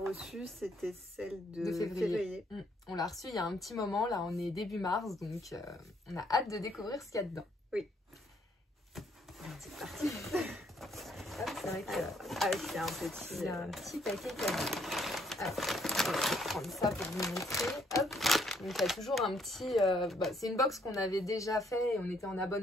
C'était celle de février. On l'a reçue il y a un petit moment, là on est début mars, donc on a hâte de découvrir ce qu'il y a dedans. Oui. C'est parti. C'est vrai que c'est un petit paquet cadeau. Alors, je vais prendre ça pour vous montrer. Hop. Donc il y a toujours un petit... c'est une box qu'on avait déjà fait et on était en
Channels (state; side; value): normal; both; correlation 0.68